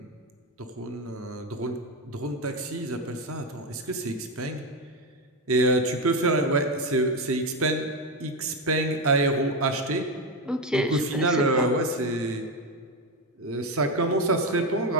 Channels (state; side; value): normal; both; correlation 0.12